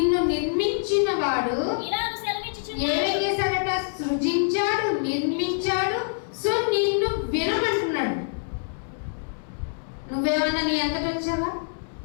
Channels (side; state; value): right; silent; 61 dB below the other